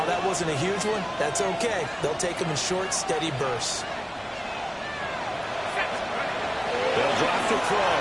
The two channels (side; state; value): both; identical; correlation 1.00